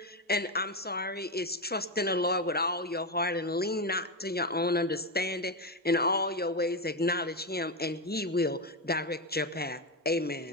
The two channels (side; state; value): both; normal; correlation 0.11